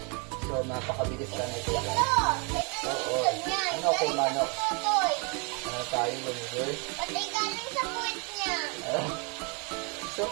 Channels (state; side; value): quieter; left; 32.3 dB